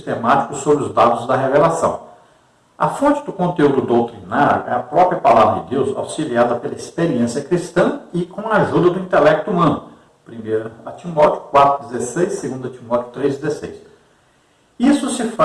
sobre os dados da revelação. A fonte do conteúdo doutrinário é a própria palavra de Deus, auxiliada pela experiência cristã e com a ajuda do intelecto humano. 1 Timóteo 4,16, 2 Timóteo 3,16. Isso se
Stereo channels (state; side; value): identical; both; correlation 1.00